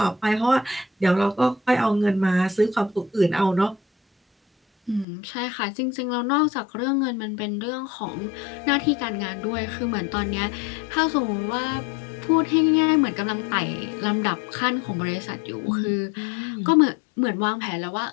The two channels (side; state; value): right; drops out; at 5.1 s